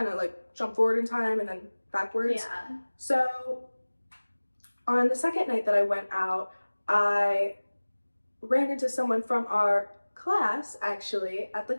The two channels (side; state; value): both; inverted; correlation -1.00